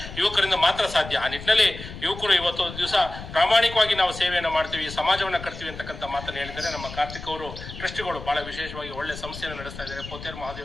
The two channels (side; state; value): left; noise; rumble, 12 dB below the sound